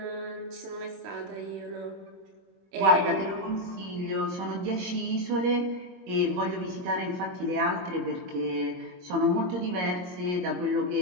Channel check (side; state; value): left; late; 22 ms